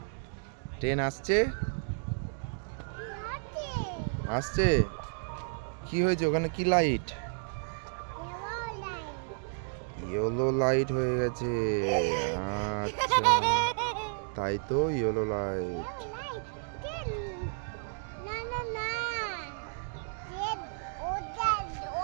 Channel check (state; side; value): silent; left; digital silence